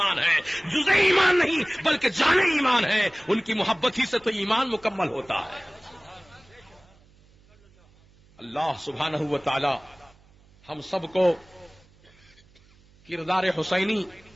ہے، جزء ایمان نہیں بلکہ جان ایمان ہے، ان کی محبت ہی سے تو ایمان مکمل ہوتا ہے۔ اللہ سبحانہ و تعالی ہم سب کو کردار حسینی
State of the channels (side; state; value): right; noise; hum, 29 dB below the sound